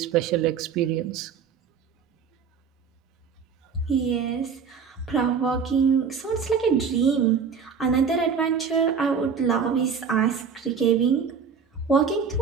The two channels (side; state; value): left; quieter; 6.3 dB